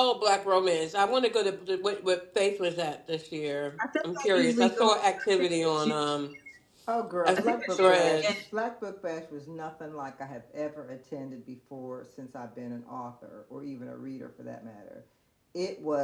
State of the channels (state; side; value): identical; both; correlation 1.00